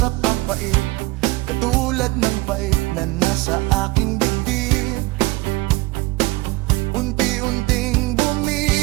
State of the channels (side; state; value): left; quieter; 21.9 dB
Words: pang pait, katulad ng pait na nasa aking dibdib. Unti-unting